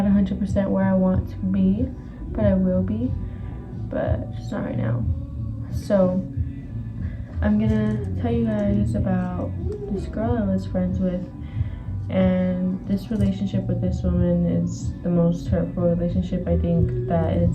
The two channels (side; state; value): both; identical; correlation 1.00